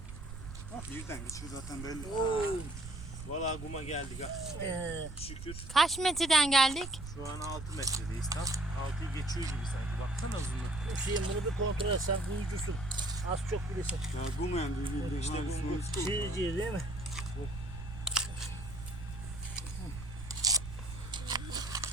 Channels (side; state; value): right; noise; rumble, 10 dB below the sound